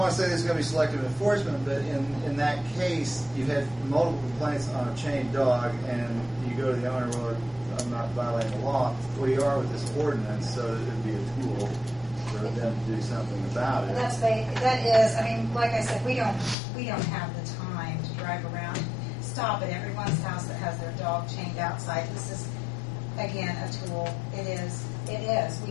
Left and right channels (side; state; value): right; drops out; at 16.6 s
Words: to say this is going to be selective enforcement, but in that case, you've had multiple complaints on a chained dog, and you go to the owner, well, I'm not violating the law. Well, you are with this ordinance, so it would be a tool for them to do something about it. That is, I mean, like I said, we don't have the time to drive around, stop at everyone's house that has their dog chained outside. This is, again, a tool. It is. We